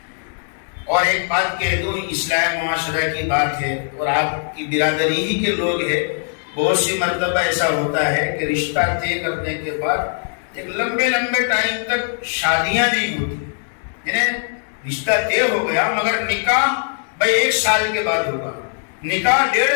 اور ایک بات کہہ دوں، اصلاح معاشرہ کی بات ہے اور آپ کی برادری ہی کے لوگ ہیں، بہت سی مرتبہ ایسا ہوتا ہے کہ رشتہ طے کرنے کے بعد ایک لمبے ٹائم تک شادیاں نہیں ہوتی، یعنی رشتہ طے ہو گیا مگر نکاح بھائی 1 سال کے بعد ہوگا، نکاح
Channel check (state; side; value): silent; right; 66 dB below the other